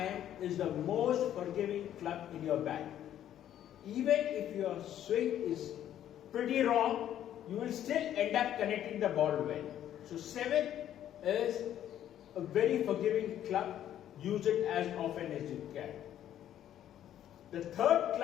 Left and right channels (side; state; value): right; quieter; 11.2 dB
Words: is the most forgiving club in your bag. Even if your swing is pretty wrong, you will still end up connecting the ball well. So 7 is a very forgiving club. Use it as often as you can. The third